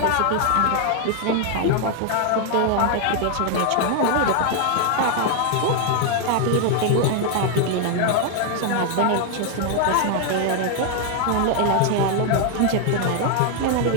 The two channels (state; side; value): different; both; correlation 0.00